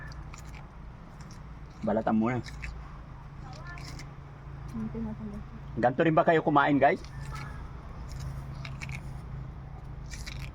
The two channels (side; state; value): both; identical; correlation 1.00